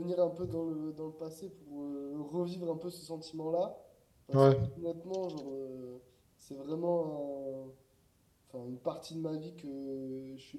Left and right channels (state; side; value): identical; both; correlation 1.00